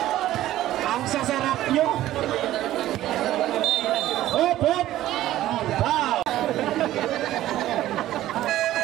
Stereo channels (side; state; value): left; quieter; 14.2 dB